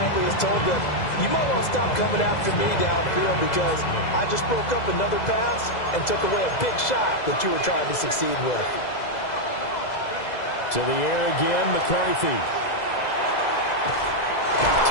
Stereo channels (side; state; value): right; late; 2.0 ms